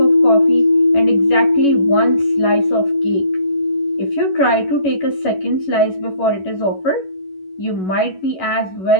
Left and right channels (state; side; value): late; right; 11 ms